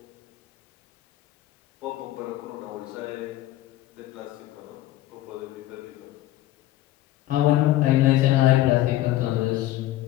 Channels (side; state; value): right; quieter; 15.1 dB